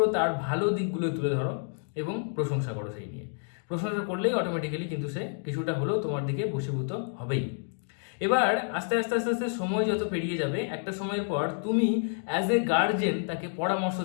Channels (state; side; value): silent; right; 59 dB below the other